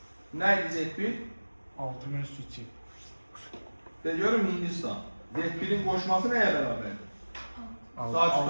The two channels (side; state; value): both; inverted; correlation -1.00